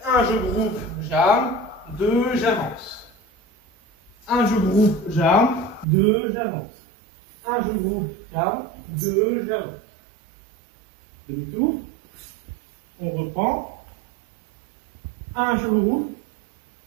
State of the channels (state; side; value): drops out; left; at 5.9 s